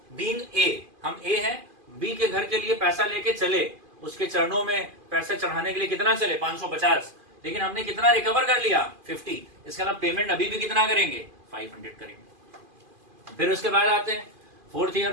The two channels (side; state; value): left; late; 2.5 ms